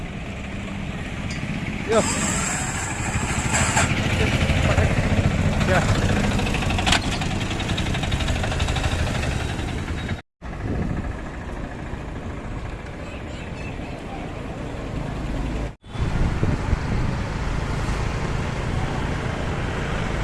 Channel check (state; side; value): identical; both; correlation 1.00